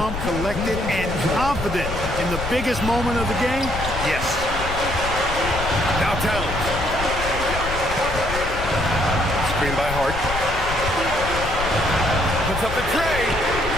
collected, and confident in the biggest moment of the game. Yes. Now Towns. Screen by Hart. Puts up the tray.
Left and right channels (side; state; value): left; noise; rumble, 7 dB below the sound